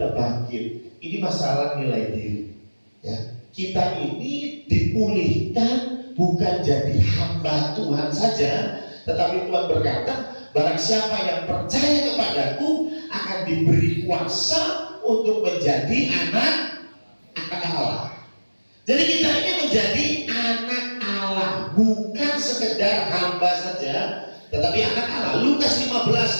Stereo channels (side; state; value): both; inverted; correlation -1.00